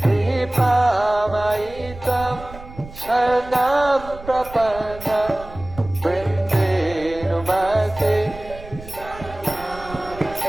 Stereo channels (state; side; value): noise; right; rumble, 16 dB below the sound